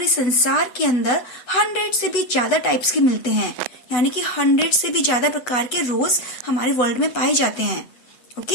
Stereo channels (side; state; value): right; late; 8.1 ms